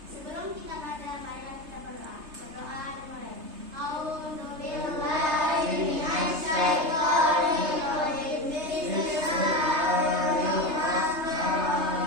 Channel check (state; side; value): late; left; 3.3 ms